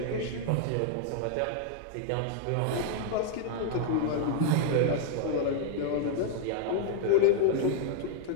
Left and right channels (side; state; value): both; different; correlation 0.00